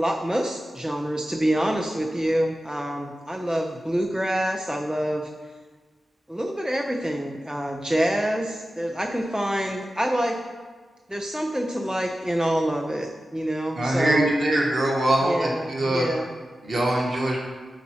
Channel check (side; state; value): both; normal; correlation 0.93